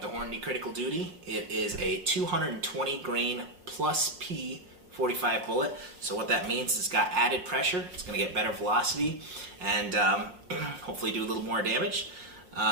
Hornady Critical Duty. It is a 220 grain plus P 45 bullet. So what that means is it's got added pressure. It's going to get better velocity and hopefully do a little more damage.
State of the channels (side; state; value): left; late; 6.0 ms